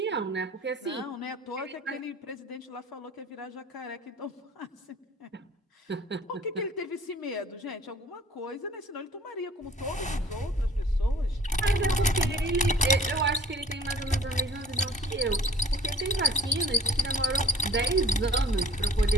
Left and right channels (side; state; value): both; normal; correlation 0.48